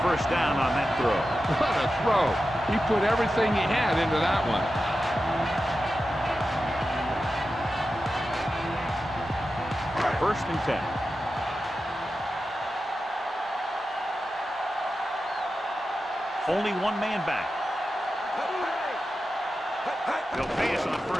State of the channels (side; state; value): both; normal; correlation 0.92